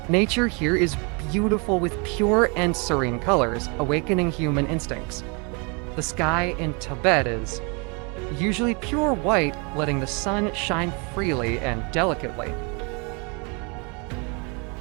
Nature here is beautiful with pure and serene colors, awakening human instincts. The sky in Tibet is usually pure white, letting the sun shine freely and delicately.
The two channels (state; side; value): quieter; left; 32.8 dB